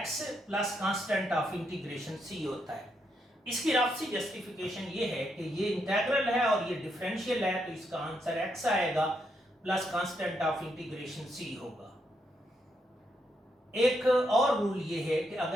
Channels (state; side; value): normal; both; correlation 0.79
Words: plus constant of integration c होता है। इसकी रफ सी जस्टिफिकेशन ये है कि ये इंटेग्रल है और ये डिफरेंशियल है, तो इसका आंसर x आएगा plus constant of integration c होगा। एक और रूल ये है कि